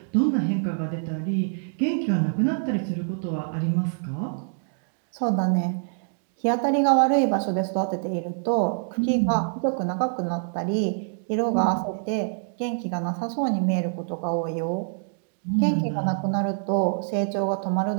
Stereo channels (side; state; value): left; silent; digital silence